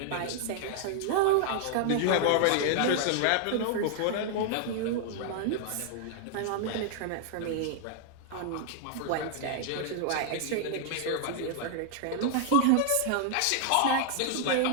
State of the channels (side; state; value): both; different; correlation 0.00